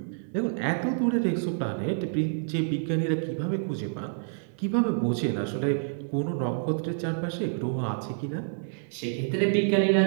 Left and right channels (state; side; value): silent; left; digital silence